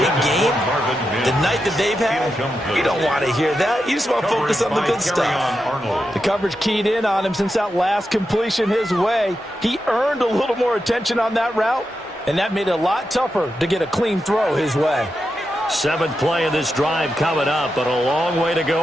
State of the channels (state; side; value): normal; both; correlation 0.88